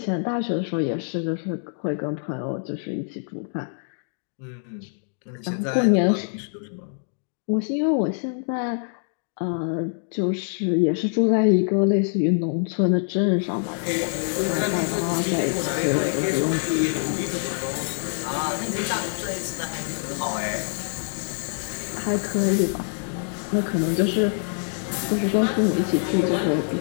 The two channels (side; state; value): right; silent; digital silence